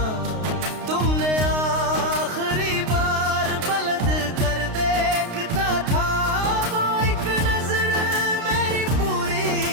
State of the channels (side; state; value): left; late; 32 ms